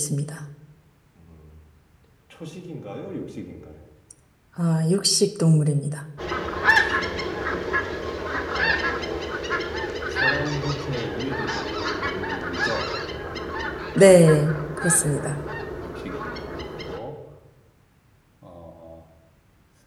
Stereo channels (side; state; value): both; identical; correlation 1.00